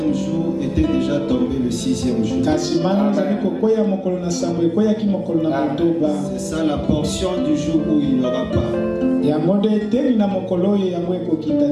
jour était déjà tombée le 6e jour. Kasi mana ezali kokwea mokolo na sambo ekweyaki mokolo na motoba. C'est ça la portion du jour où il n'y aura pas. Yango nde eteli na mokolo oyo yango ekokita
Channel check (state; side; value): identical; both; correlation 1.00